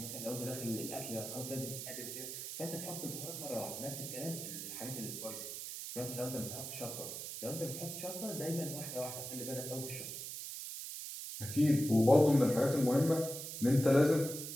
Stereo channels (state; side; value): noise; right; hiss, 7 dB below the sound